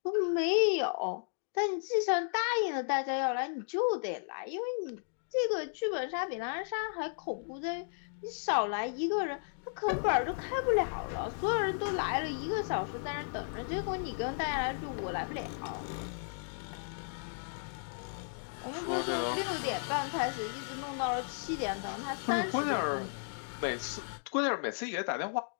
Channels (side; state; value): right; silent; digital silence